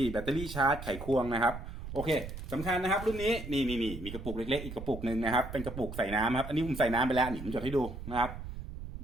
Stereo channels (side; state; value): right; noise; rumble, 9 dB below the sound